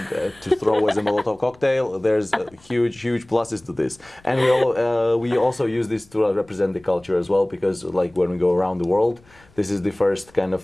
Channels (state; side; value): noise; left; rumble, 29 dB below the sound